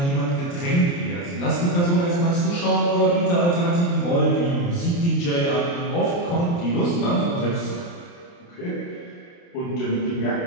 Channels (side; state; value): right; late; 29 ms